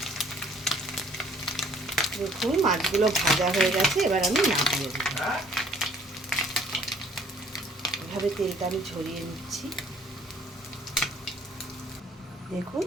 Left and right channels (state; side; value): normal; both; correlation 0.59